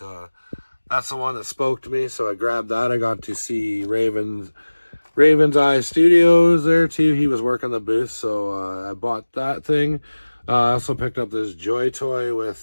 that's the one that spoke to me. So I grabbed that. I got to see Raven's Eye Studios there too. He was working the booth, so I bought that thing. I also picked up this Joy Toy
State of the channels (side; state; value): both; inverted; correlation -1.00